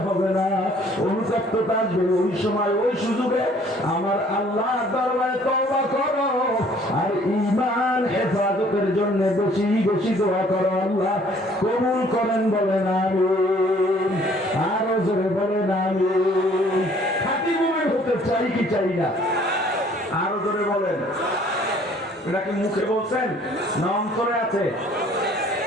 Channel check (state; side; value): normal; both; correlation 0.57